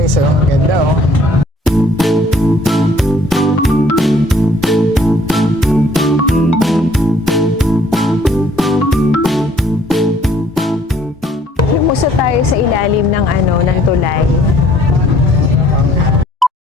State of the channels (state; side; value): normal; both; correlation 0.60